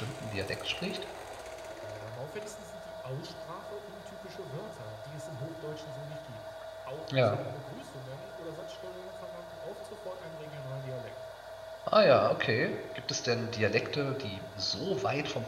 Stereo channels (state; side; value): noise; left; hum, 26 dB below the sound